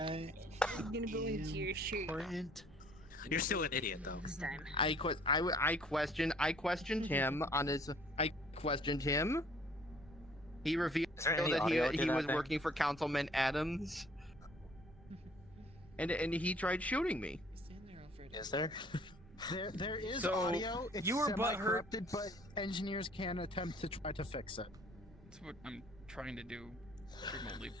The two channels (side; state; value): both; normal; correlation 0.57